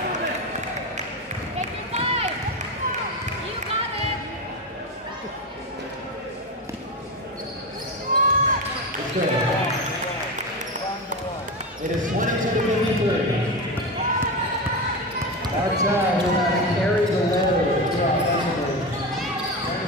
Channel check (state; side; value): normal; both; correlation 0.19